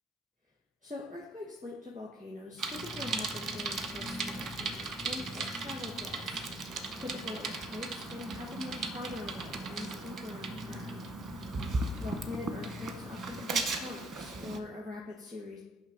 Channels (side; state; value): both; normal; correlation 0.63